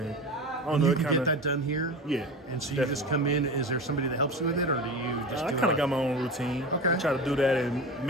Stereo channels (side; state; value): both; normal; correlation 0.28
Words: I don't And know. you It can kind get of that done here. Yeah. And so you definitely. just come in. Is there somebody that helps you with it, or do you just? I do kind of it? got my own routine. Okay. I try to do that and